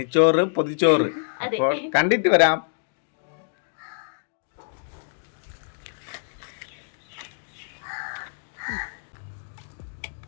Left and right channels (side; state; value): right; silent; digital silence